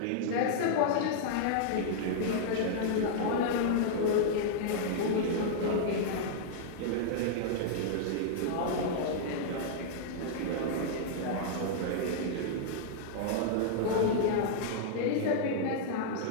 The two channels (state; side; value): different; both; correlation -0.01